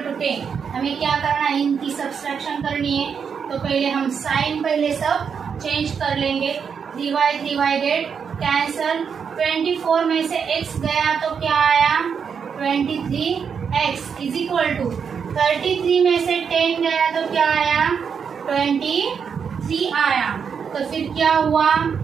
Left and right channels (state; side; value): quieter; left; 6.7 dB